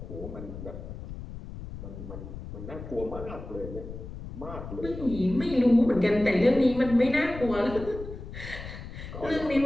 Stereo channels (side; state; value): left; noise; rumble, 10 dB below the sound